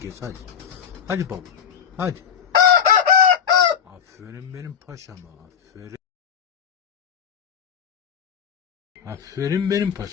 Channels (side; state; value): right; quieter; 8.0 dB